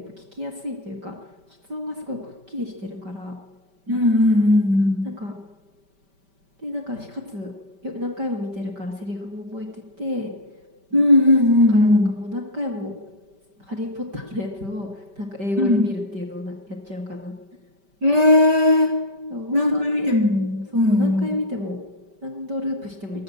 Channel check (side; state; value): left; late; 5.1 ms